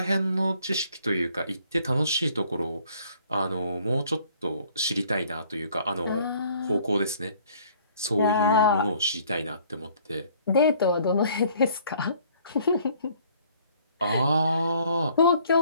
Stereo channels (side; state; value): both; inverted; correlation -0.59